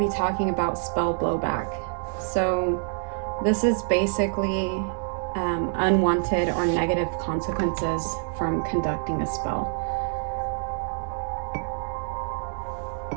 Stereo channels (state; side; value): silent; left; digital silence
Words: talking about spell blowback. So this is basically unwanted or negative consequences from conducting a spell.